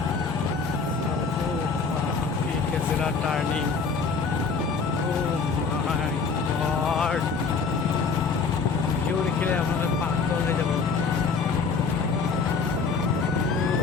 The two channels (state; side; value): quieter; right; 5.0 dB